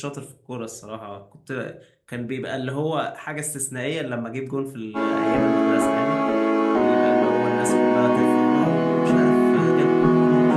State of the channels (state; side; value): identical; both; correlation 1.00